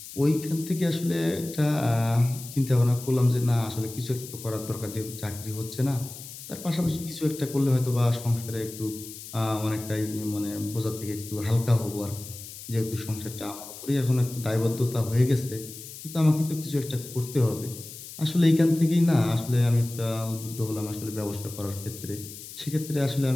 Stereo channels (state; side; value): noise; left; hiss, 13 dB below the sound